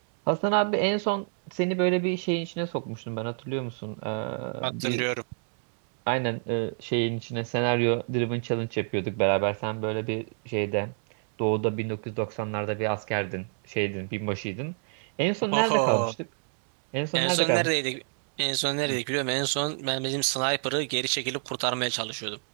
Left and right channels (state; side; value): silent; left; digital silence